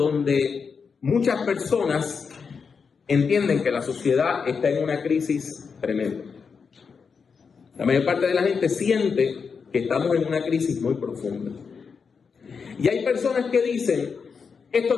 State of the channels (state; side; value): quieter; right; 5.7 dB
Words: muchas personas entienden que la sociedad está en una crisis tremenda. La mayor parte de la gente siente que estamos en una crisis muy profunda. Y hay personas que dicen: esto